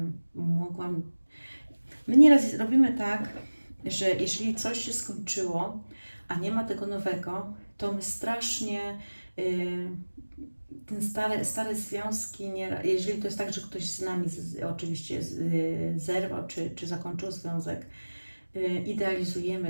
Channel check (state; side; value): inverted; both; correlation -1.00